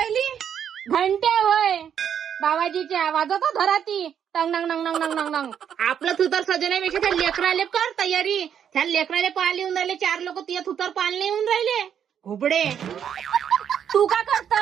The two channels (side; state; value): left; quieter; 8.7 dB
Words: घंटे होय बाबाजीच्या वाजवतो घराती. टंग नंग नंग नंग नंग नंग. आपलं थुतर सजवण्यापेक्षा त्या लेकराले कर तयारी. त्या लेकराले पाहायला येऊन राहिले 4 लोक. तिया थुतर पाहायला येऊन राहिले घुबडे. तू का